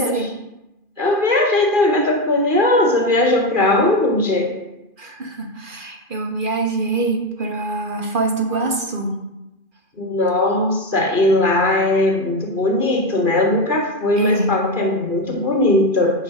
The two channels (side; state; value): left; late; 2.4 ms